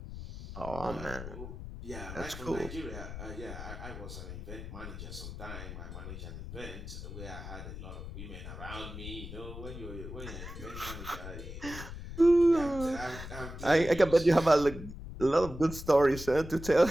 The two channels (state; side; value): noise; left; rumble, 10 dB below the sound